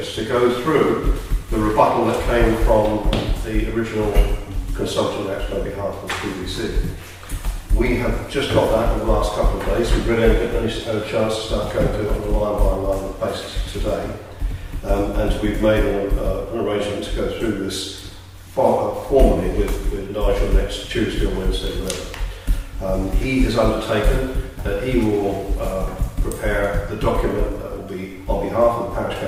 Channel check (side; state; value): both; identical; correlation 1.00